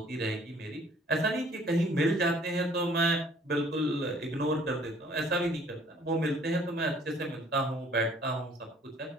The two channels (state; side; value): normal; both; correlation 0.57